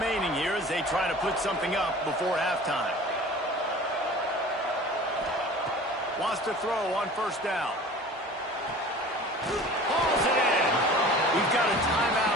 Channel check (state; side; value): normal; both; correlation 0.42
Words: here as they try to put something up before halftime. Wants to throw on first down. Hauls it in. We've got a